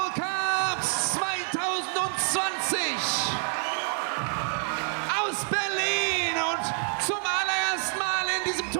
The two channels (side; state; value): left; silent; 56 dB below the other